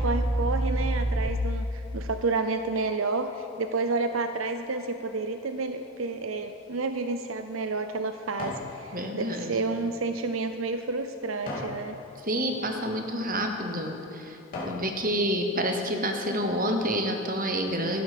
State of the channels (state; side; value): normal; both; correlation 0.16